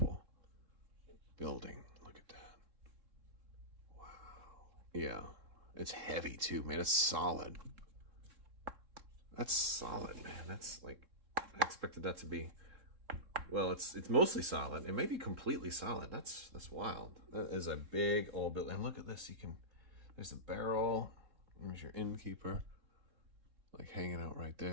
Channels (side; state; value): left; late; 3.7 ms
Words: building. Look at that. Wow. Yeah. It's heavy too, man. It's solid. That's solid, man. That's like, I expected that to be, well, it's mostly solid. It may be completely solid. That's wild. That is a big old building. And look at this. There's the barrel. There's your innkeeper, like hanging out right